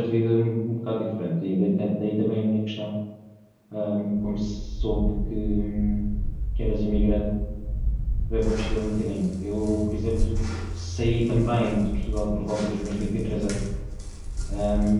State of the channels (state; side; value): identical; both; correlation 1.00